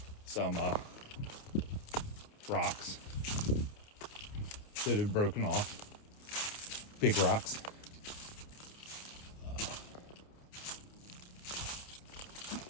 some rocks that had broken off, big rocks.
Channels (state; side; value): late; right; 29 ms